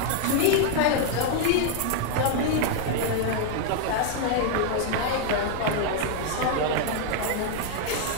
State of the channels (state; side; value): different; both; correlation 0.00